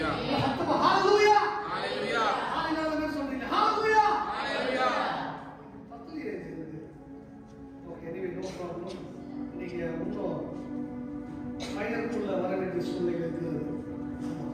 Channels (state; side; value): identical; both; correlation 1.00